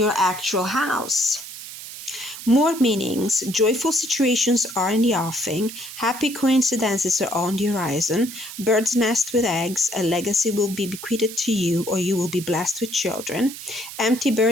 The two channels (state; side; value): noise; right; hiss, 12 dB below the sound